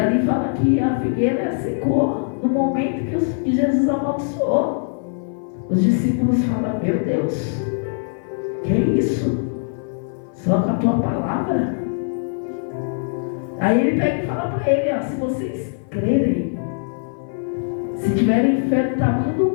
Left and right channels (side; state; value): right; silent; 57 dB below the other